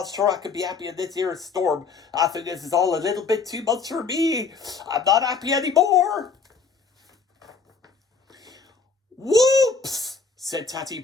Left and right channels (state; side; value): quieter; right; 5.0 dB